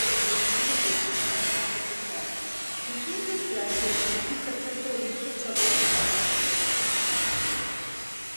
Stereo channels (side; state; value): both; inverted; correlation -1.00